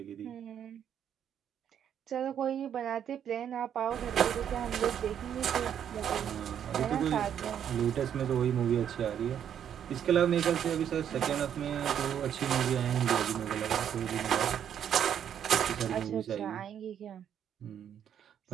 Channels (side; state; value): left; quieter; 9.2 dB